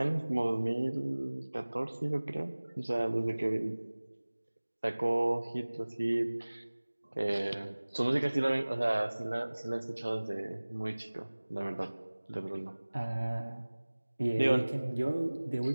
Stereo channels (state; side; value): inverted; both; correlation -1.00